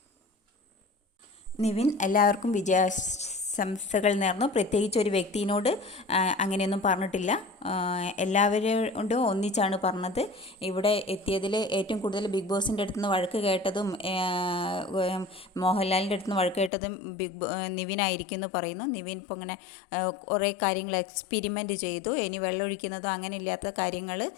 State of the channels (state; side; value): drops out; right; at 16.7 s